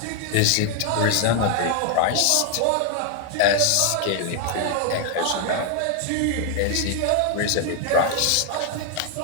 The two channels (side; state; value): both; different; correlation 0.00